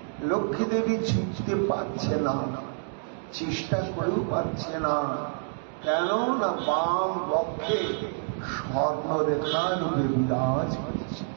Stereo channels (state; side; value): silent; left; digital silence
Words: লক্ষ্মী দেবী ছুটতে পারছে না, চেষ্টা করেও পারছে না। কেন না বাম বক্ষে স্বর্ণরেখা রূপে বিরাজ করছে।